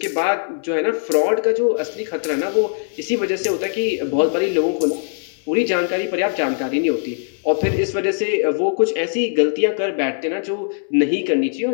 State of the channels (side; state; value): right; silent; 65 dB below the other